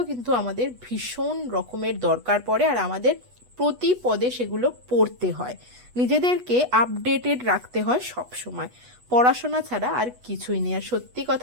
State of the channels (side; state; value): left; late; 8.2 ms